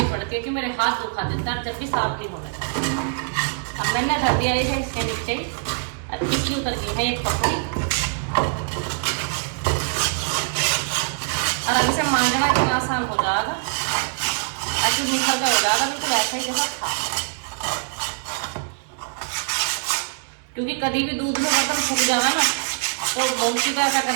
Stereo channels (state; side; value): silent; left; digital silence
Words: पड़ती है कि मेरे हाथ दुखा देता है जब भी साफ नहीं होना चाहिए। अब मैंने धर दिया इसे इसके नीचे, अब इसकी उतर गई है एक पपड़ी और अब इसे मांझना इतना आसान हो जाएगा, ऐसे निकल का हो जाएगा बिल्कुल ऐसा ही जैसा था। क्योंकि कभी भी दूध में बर्तन फूक जाना ना तो बहुत सी ऐसा